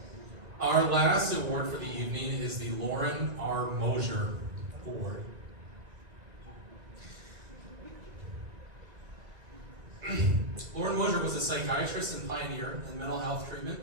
Our last award for the evening is the Loren R. Mosher Award. Loren Mosher was a psychiatrist and pioneer in mental health treatment,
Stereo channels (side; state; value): left; late; 1.9 ms